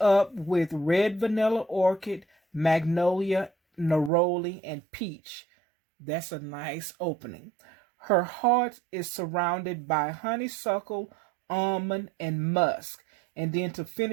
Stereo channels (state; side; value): drops out; left; at 4.1 s